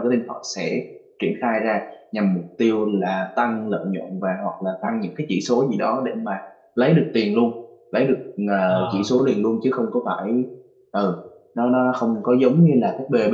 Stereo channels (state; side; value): identical; both; correlation 1.00